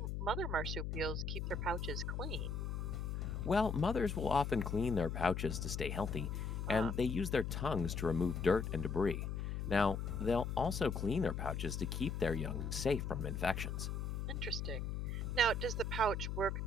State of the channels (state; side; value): noise; left; hum, 3 dB below the sound